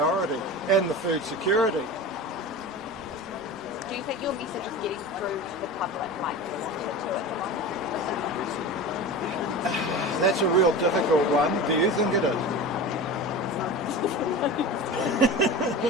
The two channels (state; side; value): noise; right; rumble, 27 dB below the sound